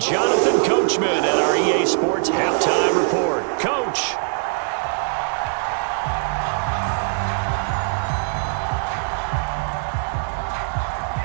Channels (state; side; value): silent; left; 65 dB below the other